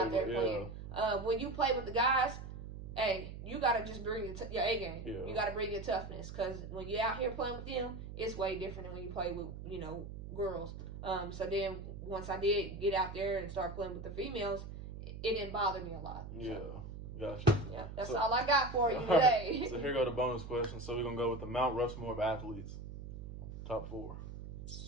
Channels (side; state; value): right; noise; hum, 10 dB below the sound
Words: there playing. When you play with the guys, hey, you got to just bring your A game. You got to bring your toughness, because when you're out here playing with them, it's way different than when you play with, you know, girls. So then once I did get out there and start playing with the females, it didn't bother me a lot. Gotcha. Yeah, that's all I got for you today. So here go the bonus question. So we're going to go with the Mount Rushmore of athletes. Top 4.